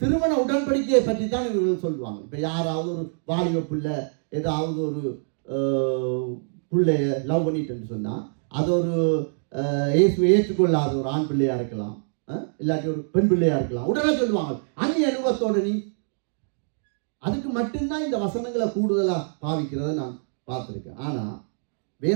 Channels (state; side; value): silent; left; digital silence